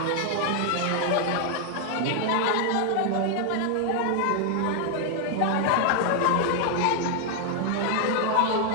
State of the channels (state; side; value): different; both; correlation 0.00